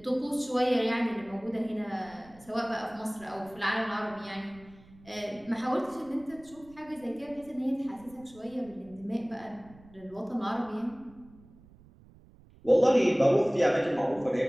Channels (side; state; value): right; noise; rumble, 24 dB below the sound